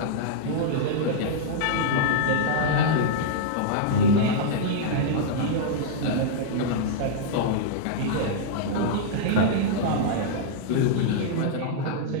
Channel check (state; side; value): different; both; correlation -0.02